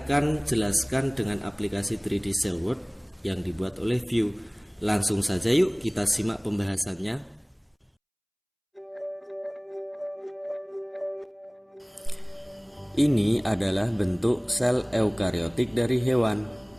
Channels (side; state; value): both; identical; correlation 1.00